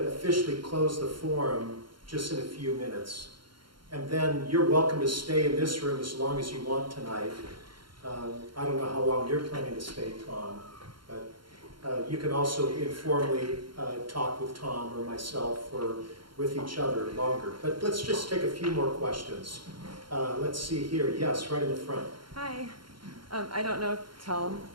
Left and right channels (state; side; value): late; left; 0.73 ms